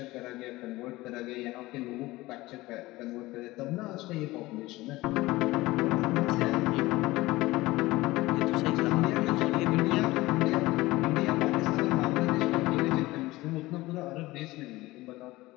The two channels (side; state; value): right; quieter; 19.4 dB